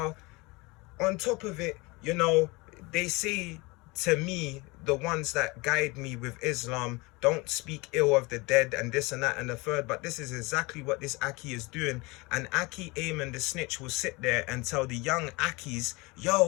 on top of it, you know, they say to me the ones that guide me with Islam don't speak ill of the dead and this and that and the third, but this is exactly what this Akhi is doing. And Akhi Ayman the snitch will sit there and tell the young Akhis,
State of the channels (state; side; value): quieter; right; 24.9 dB